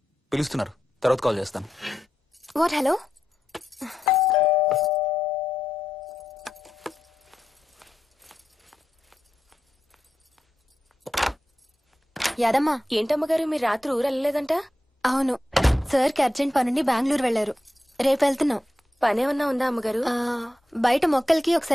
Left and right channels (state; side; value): normal; both; correlation 0.88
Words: పిలుస్తున్నారు, తర్వాత కాల్ చేస్తాను. వాట్? హలో, యాదమ్మా. ఏంటమ్మగారు మీరు రాత్రి ఊరు వెళ్ళలేదంట? అవును, సార్కి అర్జెంట్ పనుండి బెంగళూరు వెళ్లారు. రేపు వెళ్తున్నాం. పనేమన్నా ఉందా అమ్మగారు? బయట మొక్కలకి